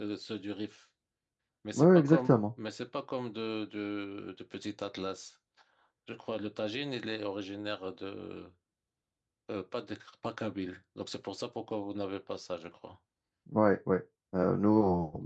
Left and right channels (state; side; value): identical; both; correlation 1.00